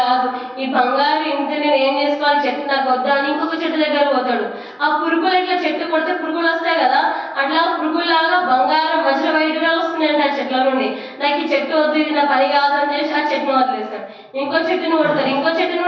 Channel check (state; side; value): identical; both; correlation 1.00